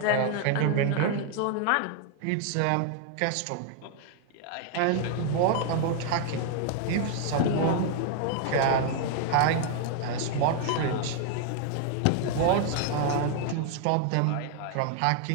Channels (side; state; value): both; different; correlation 0.00